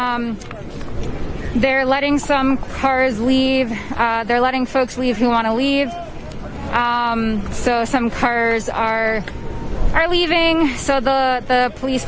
They're letting some cars leave. They're letting folks leave who want to leave. So some cars are leaving. So the police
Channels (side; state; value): both; identical; correlation 1.00